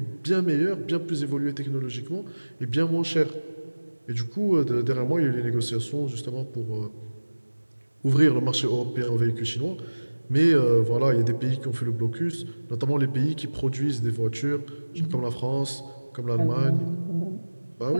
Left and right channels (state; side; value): inverted; both; correlation -1.00